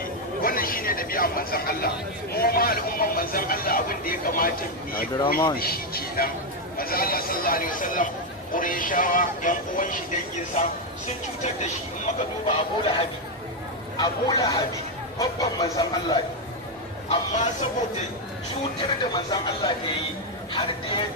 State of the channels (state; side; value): normal; both; correlation 0.04